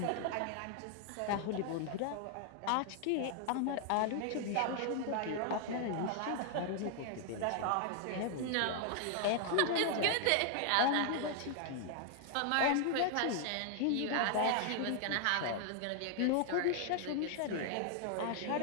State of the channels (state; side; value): different; both; correlation 0.00